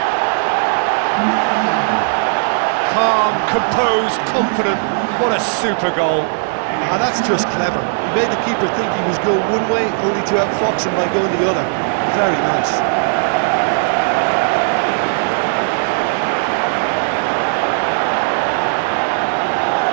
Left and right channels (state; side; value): silent; left; digital silence